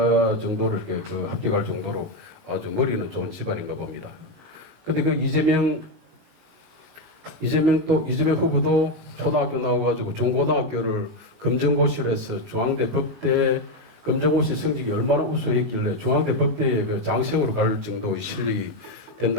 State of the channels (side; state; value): left; late; 19 ms